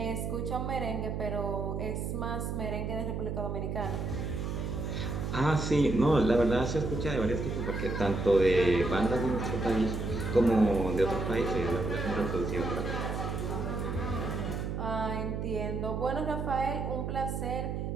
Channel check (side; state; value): right; noise; hum, 3 dB below the sound